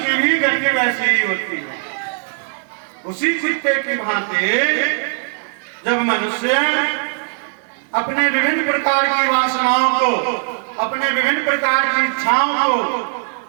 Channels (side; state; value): left; silent; 67 dB below the other